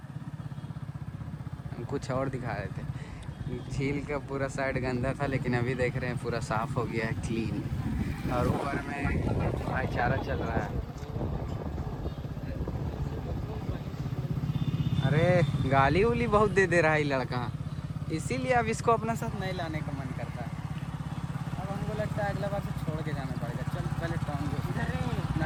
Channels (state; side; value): identical; both; correlation 1.00